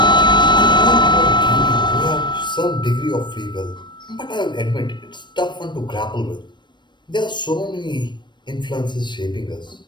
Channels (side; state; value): right; late; 0.22 ms